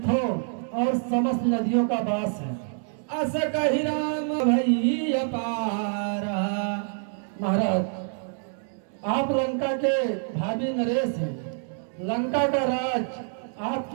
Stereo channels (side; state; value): left; silent; 57 dB below the other